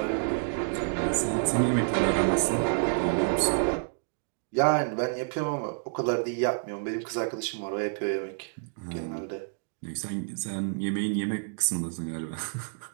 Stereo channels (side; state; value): left; silent; digital silence